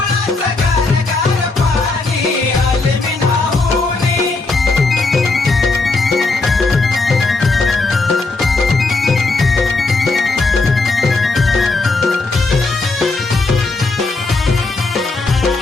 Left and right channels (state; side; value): quieter; right; 3.6 dB